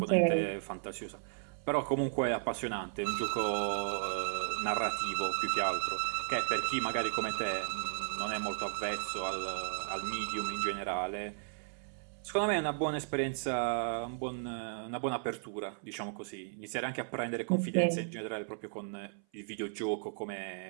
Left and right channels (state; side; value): silent; left; 54 dB below the other